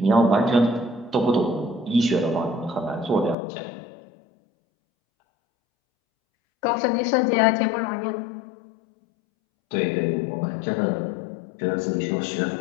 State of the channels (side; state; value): right; drops out; at 3.4 s